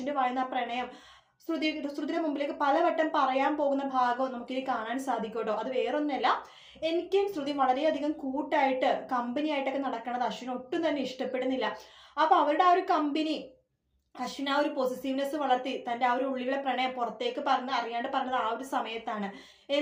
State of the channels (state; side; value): identical; both; correlation 1.00